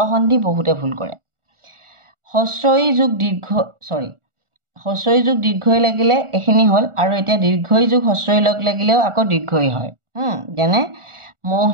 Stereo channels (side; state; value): left; late; 1.4 ms